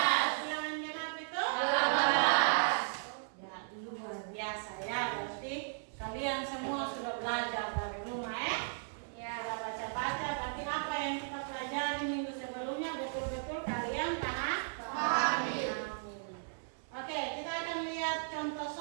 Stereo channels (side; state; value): left; silent; digital silence